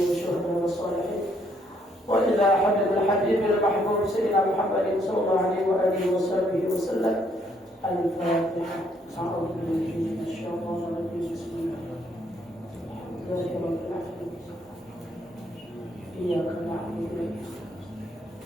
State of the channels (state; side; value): normal; both; correlation 0.70